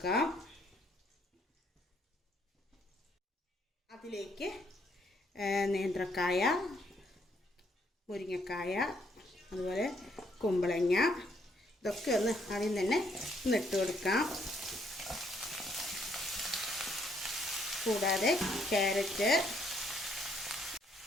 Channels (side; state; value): both; normal; correlation 0.70